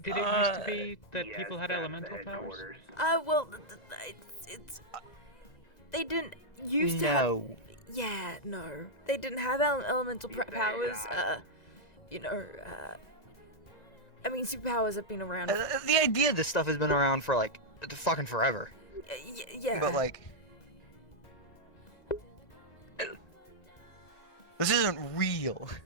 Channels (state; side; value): late; right; 2.0 ms